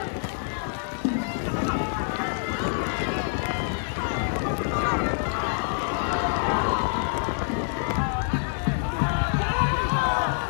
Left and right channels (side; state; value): right; silent; digital silence